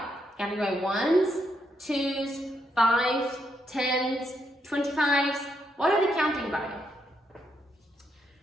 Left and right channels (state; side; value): normal; both; correlation 0.78